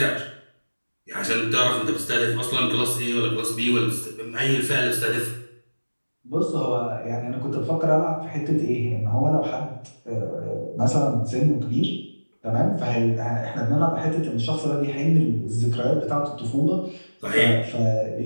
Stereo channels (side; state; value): both; inverted; correlation -1.00